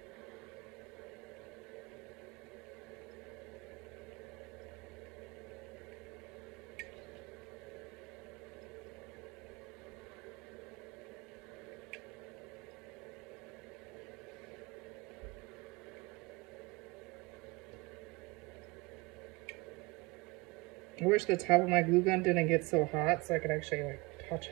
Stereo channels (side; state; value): left; quieter; 24.6 dB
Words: I wish the top of my glue gun didn't get so hot so I could actually like touch